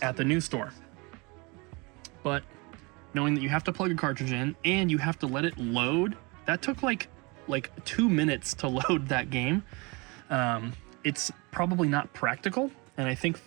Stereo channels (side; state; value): left; quieter; 27.6 dB